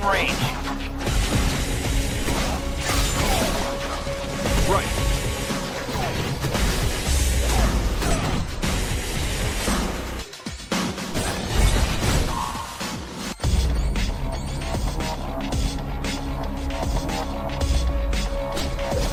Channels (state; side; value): identical; both; correlation 1.00